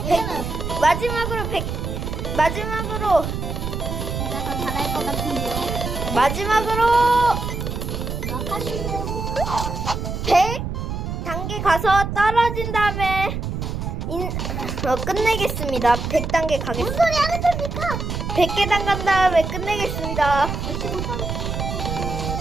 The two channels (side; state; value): right; noise; rumble, 4 dB below the sound